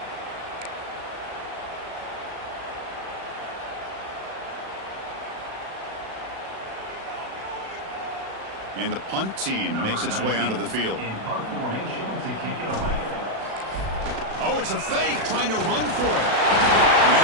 And the punt team makes its way onto the field. In punt formation to kick it away. Oh, it's a fake, trying to run for it. And the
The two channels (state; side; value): late; left; 36 ms